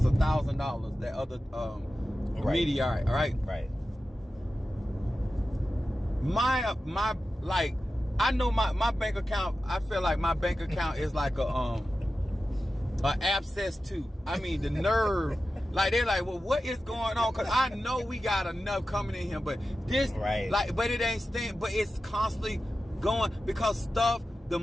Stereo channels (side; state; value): both; normal; correlation 0.93